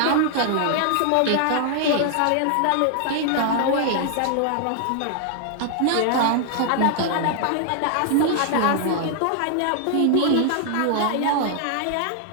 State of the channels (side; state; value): both; different; correlation -0.01